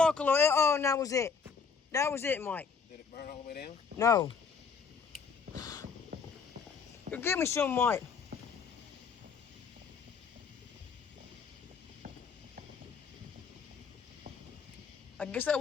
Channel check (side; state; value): right; quieter; 5.6 dB